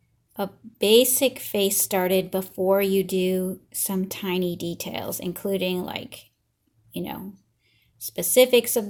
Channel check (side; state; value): both; identical; correlation 1.00